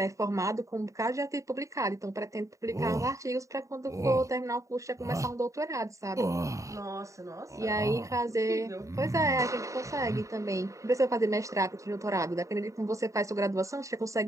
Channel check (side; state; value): left; late; 0.15 ms